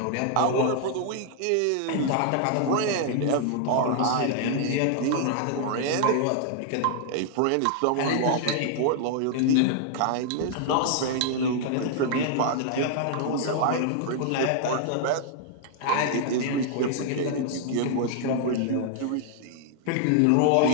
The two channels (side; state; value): both; different; correlation -0.01